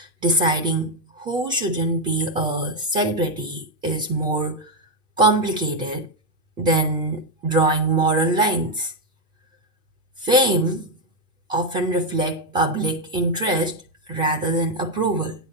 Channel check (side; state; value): both; normal; correlation 0.03